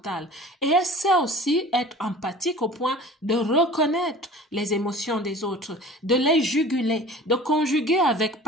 et elle sait aussi être empathique au point de reconnaître les émotions des autres, de les juguler, de conjuguer avec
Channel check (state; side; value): normal; both; correlation 0.43